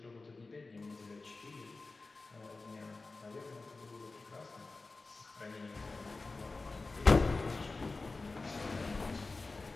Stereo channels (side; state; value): right; quieter; 3.6 dB